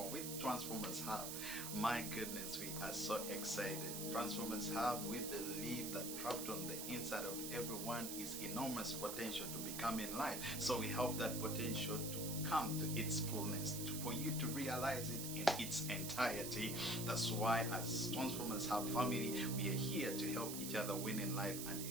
with Transformers Hub. My goodness, we are so excited. Transformers Hub, we believe that trapped on the inside of everyone is enormous potential to become in life. So we help that potential to come to its fullness, for you to realize it in its entirety. That's why as Transformers Hub family, we are here to help each other win in life and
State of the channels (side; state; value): right; noise; hiss, 4 dB below the sound